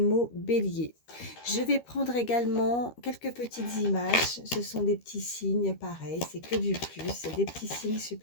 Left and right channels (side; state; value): right; late; 13 ms